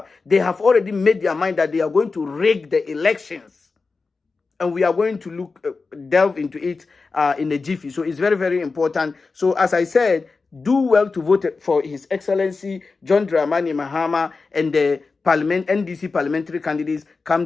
they have already made their mind that they are going to rig the elections. And we are going to delve into it in a jiffy. So it's very, very important. So as I said, do well to vote for His Excellency John Dramani Mahama and the NDC parliamentary candidates come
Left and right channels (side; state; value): right; quieter; 4.2 dB